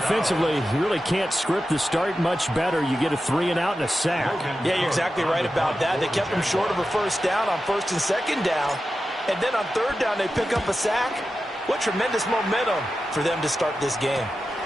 you really can't script the start much better. You get a 3-and-out and a sack. Yeah, you're exactly right about that. They kept him short of a 1st down on 1st and 2nd down. And then on 3rd down, they pick up a sack. What tremendous momentum for them to start this game.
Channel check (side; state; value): both; normal; correlation 0.92